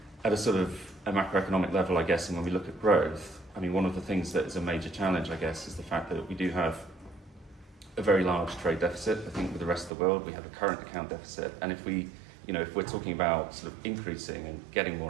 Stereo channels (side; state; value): left; drops out; at 9.9 s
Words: at a sort of a macroeconomic level, I guess, and when we look at growth, I mean, one of the things that is a major challenge, I guess, is the fact that we do have a very large trade deficit. I think with the rest of the world, we have a current account deficit. And if we, if we're talking about sort of increasing and getting more